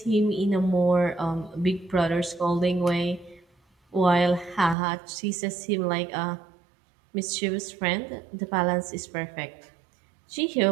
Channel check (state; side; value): drops out; left; at 4.8 s